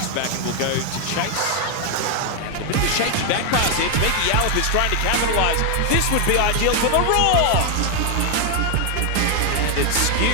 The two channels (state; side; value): different; both; correlation 0.01